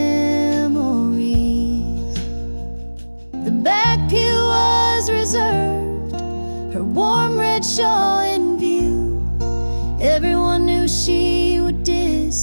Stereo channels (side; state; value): both; inverted; correlation -1.00